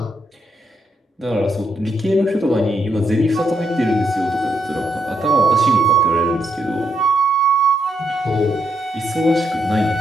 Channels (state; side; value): normal; both; correlation 0.78